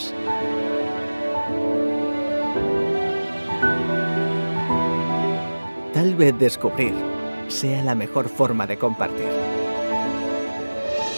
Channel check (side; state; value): both; inverted; correlation -1.00